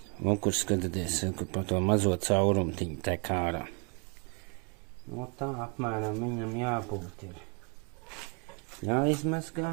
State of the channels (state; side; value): quieter; left; 35.4 dB